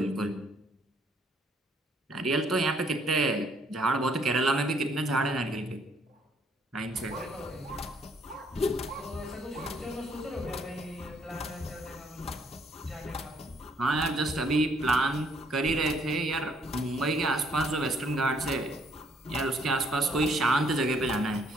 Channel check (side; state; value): both; normal; correlation 0.66